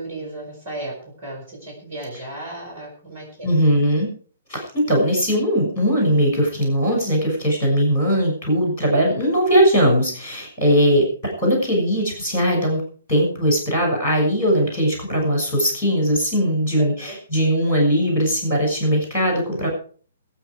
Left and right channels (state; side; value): inverted; both; correlation -0.56